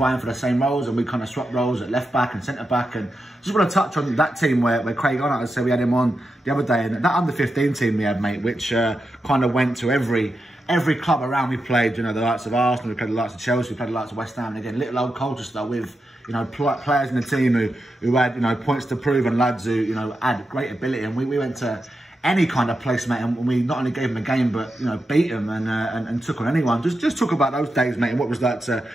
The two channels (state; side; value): normal; both; correlation 0.88